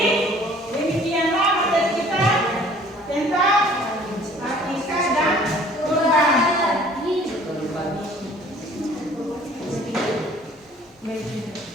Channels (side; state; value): both; normal; correlation 0.52